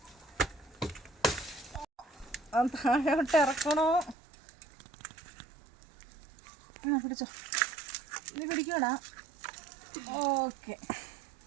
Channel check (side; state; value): left; drops out; at 4.2 s